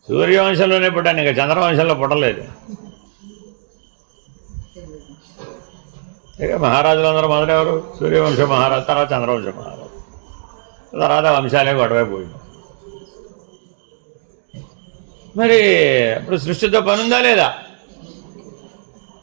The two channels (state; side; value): silent; left; 68 dB below the other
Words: సూర్యవంశంలోనే పుట్టాను, ఇంకా చంద్రవంశంలో పుట్టలేదు. ఇక మహారాజులందరూ మొదలెవరు? సూర్యవంశ మహారాజు, తర్వాత చంద్రవంశ మహారాజు, తర్వాత వంశాలే గొడవైపోయింది. మరి ఇప్పుడు సృష్టితో పని ఉందా లేదా?